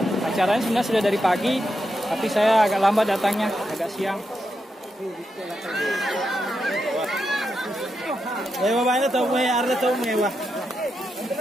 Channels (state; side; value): normal; both; correlation 0.85